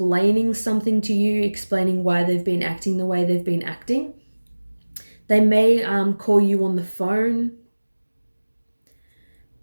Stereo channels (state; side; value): inverted; both; correlation -1.00